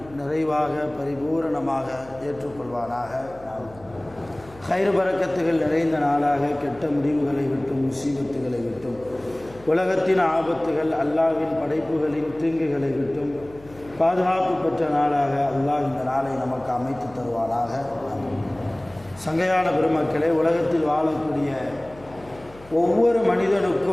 நிறைவாக பரிபூரணமாக ஏற்றுக்கொள்வானாக. கைர் பரக்கத்துகள் நிறைந்த நாளாக, கெட்ட முடிவுகளை விட்டும் முசீபத்துகளை விட்டும் உலகத்தின் ஆபத்துகள் அல்லாஹ்வின் படைப்புகளின் தீங்குகளை விட்டும் பாதுகாப்பு பெற்ற நாளாக அல்லாஹ் இந்த நாளை நமக்கு அமைத்து தருவானாக. சங்கையான பெருமக்களே, உலகத்தில் வாழக்கூடிய ஒவ்வொரு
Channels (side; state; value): left; noise; hum, 22 dB below the sound